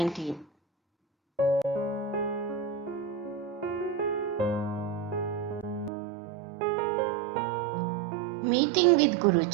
Meeting with Guru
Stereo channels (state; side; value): drops out; left; at 5.9 s